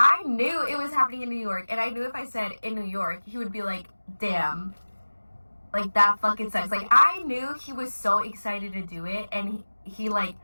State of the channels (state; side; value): inverted; both; correlation -1.00